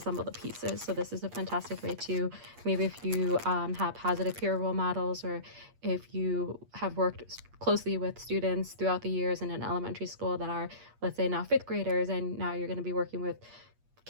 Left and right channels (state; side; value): late; left; 8.5 ms